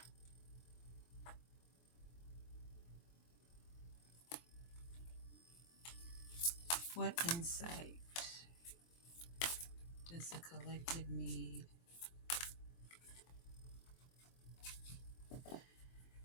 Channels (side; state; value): right; late; 23 ms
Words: What insight does the collective need?